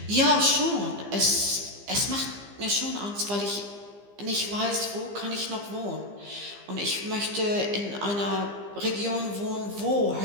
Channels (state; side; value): late; left; 15 ms